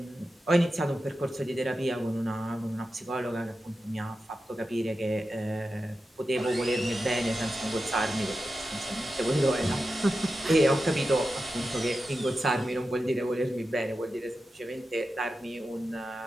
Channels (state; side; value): normal; both; correlation 0.91